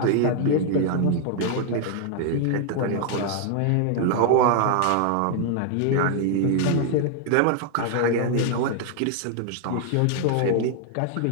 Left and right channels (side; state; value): both; different; correlation 0.00